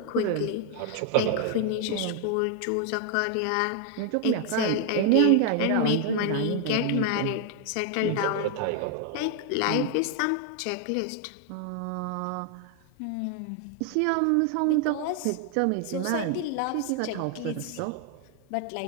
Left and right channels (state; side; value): different; both; correlation 0.00